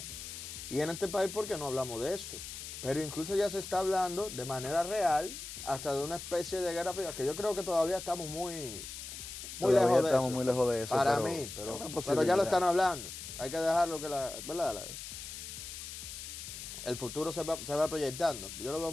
y en este país, ¿por qué no hablamos de eso? Pero incluso ya se está hablando de manera real hasta de una especie de guerra fría, que yo creo que todavía estamos muy lejos de eso. Muy lejos de eso. Para mí, pero ya lo están hablando. Hay que dejarlo que el futuro se va proyectando. Yo lo veo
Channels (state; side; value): noise; left; hiss, 9 dB below the sound